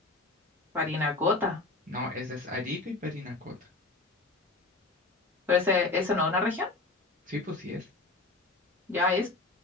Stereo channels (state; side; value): quieter; right; 3.3 dB